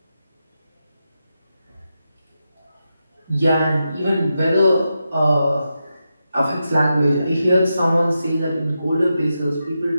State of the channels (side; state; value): both; inverted; correlation -0.88